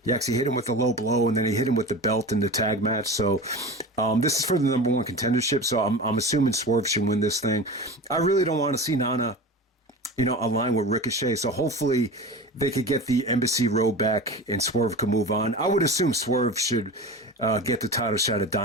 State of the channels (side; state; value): both; normal; correlation 0.31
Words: He actually hit him with a low blow, and then he hit him with the belt in the tag match. So this is for the number 1 contendership. So I'm assuming Swerve should win this thing. I really don't want to see Nana align with Ricochet. So hopefully they could get the Embassy Road back and Swerve can move on. I would assume Swerve should get the title shot at